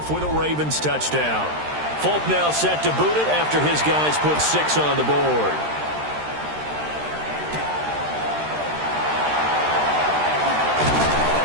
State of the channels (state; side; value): late; left; 13 ms